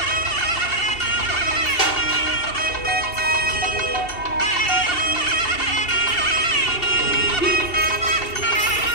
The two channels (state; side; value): late; right; 2.7 ms